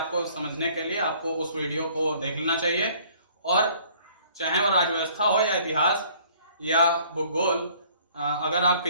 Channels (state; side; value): inverted; both; correlation -0.56